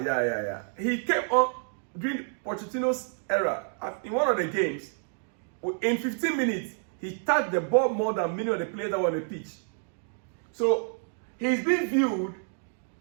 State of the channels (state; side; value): silent; left; 59 dB below the other